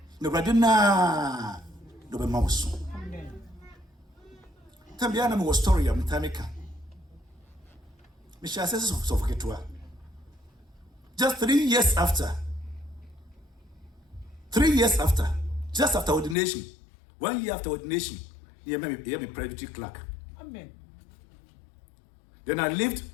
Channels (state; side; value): drops out; right; at 16.4 s